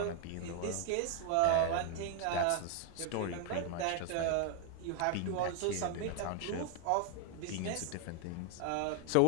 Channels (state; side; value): different; both; correlation 0.01